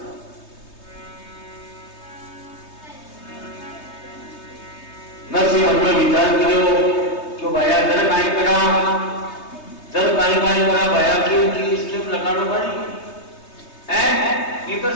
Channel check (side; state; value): right; late; 3.2 ms